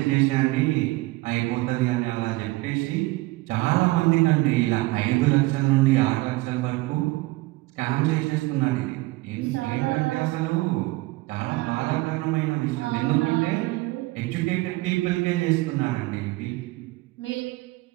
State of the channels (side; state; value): left; quieter; 21.0 dB